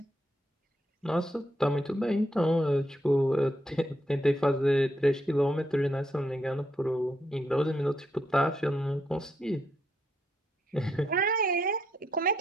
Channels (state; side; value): normal; both; correlation 0.78